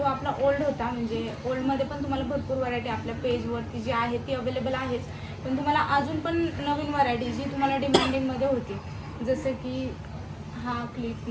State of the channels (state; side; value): identical; both; correlation 1.00